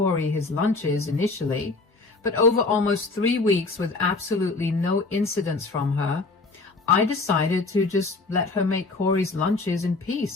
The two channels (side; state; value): right; quieter; 3.6 dB